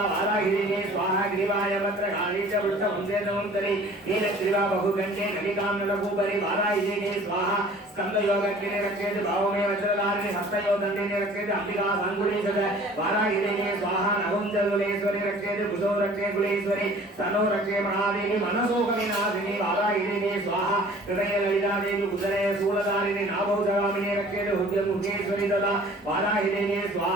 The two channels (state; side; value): normal; both; correlation 0.49